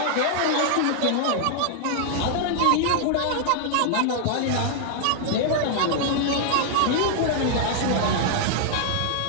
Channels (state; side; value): different; both; correlation -0.01